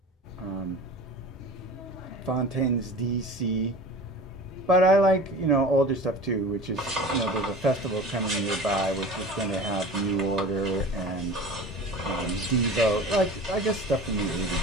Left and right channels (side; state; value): both; normal; correlation 0.38